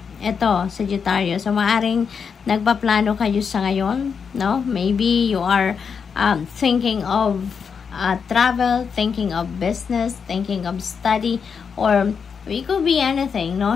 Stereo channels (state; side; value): quieter; right; 6.2 dB